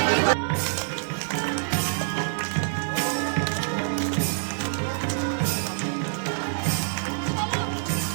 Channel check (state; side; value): silent; left; digital silence